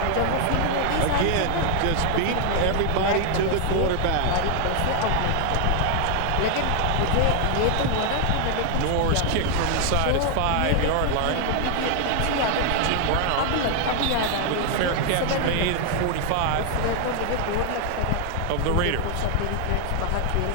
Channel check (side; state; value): both; different; correlation 0.00